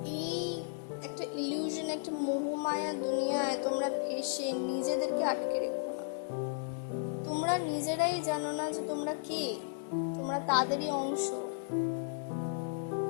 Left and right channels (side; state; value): right; silent; digital silence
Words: এই একটা ইলিউশন, একটা মোহমায়া দুনিয়ায় তোমরা ফেসে নিজেদেরকে আটকে রেখো না। তোমরা নিজেরাই জানো না যে তোমরা কে, তোমরা তাদেরই অংশ।